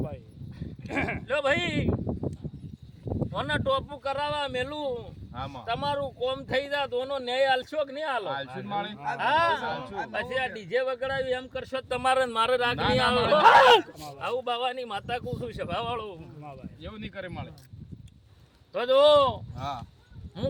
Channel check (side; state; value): both; identical; correlation 1.00